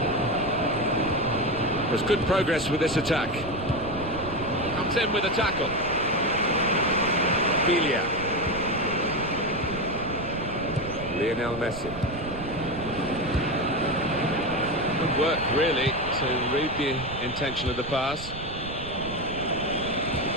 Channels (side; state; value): right; noise; rumble, 12 dB below the sound